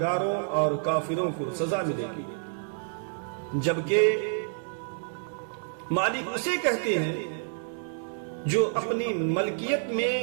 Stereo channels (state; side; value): silent; left; digital silence